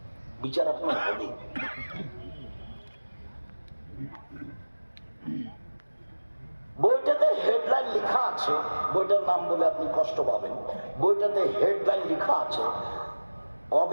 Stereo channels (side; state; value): both; inverted; correlation -1.00